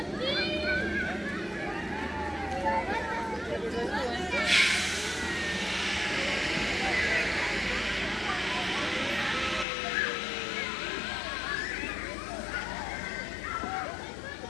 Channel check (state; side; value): drops out; right; at 9.7 s